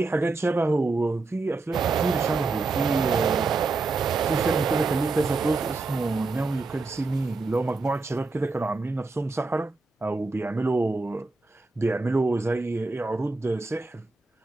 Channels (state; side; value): quieter; left; 3.7 dB